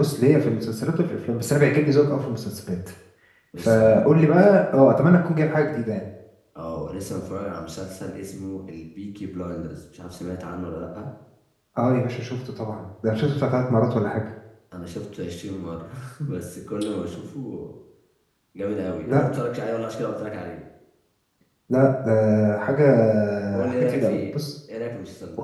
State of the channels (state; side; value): identical; both; correlation 1.00